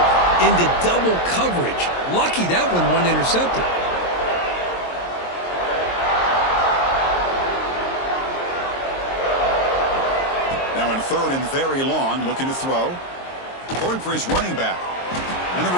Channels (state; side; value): late; right; 22 ms